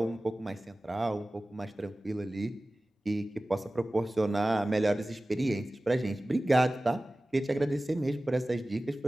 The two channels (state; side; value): normal; both; correlation 0.97